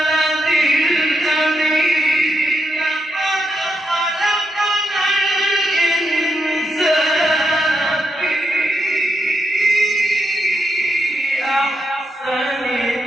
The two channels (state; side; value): normal; both; correlation 0.82